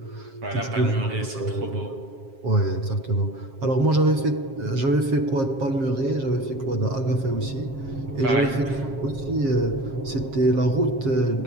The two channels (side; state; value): left; late; 7.4 ms